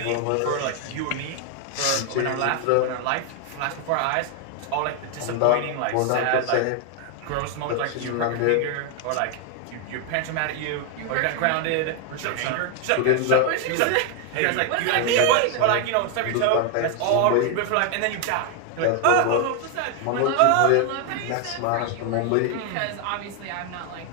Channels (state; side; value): different; both; correlation 0.00